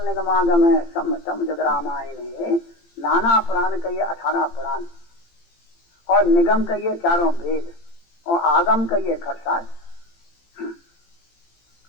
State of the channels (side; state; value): right; late; 18 ms